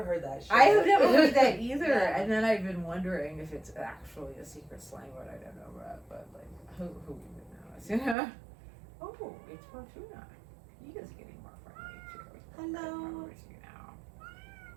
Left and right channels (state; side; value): drops out; left; at 8.2 s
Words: heard that shit. I have never heard that either, Yeah. and then I've been wondering if it's actually a secret slang word I don't know about, but like, who even knows, Oh, it's Fortuna. He is getting more friendly too. Hello. I remember you now.